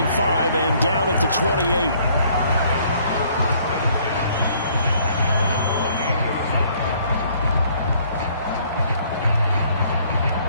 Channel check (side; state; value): both; inverted; correlation -0.62